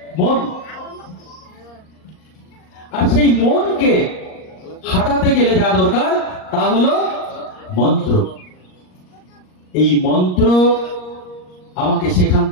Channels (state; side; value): late; right; 38 ms